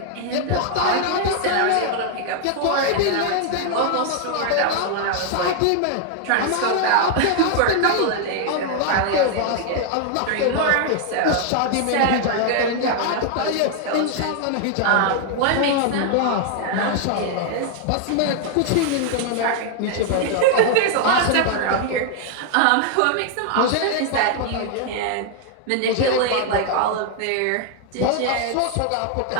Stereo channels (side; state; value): both; different; correlation 0.00